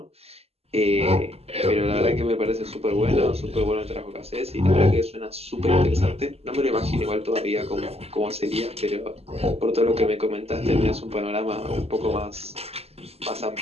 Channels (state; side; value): late; left; 0.29 ms